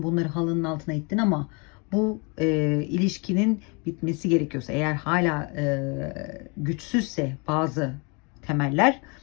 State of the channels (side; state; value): right; quieter; 31.9 dB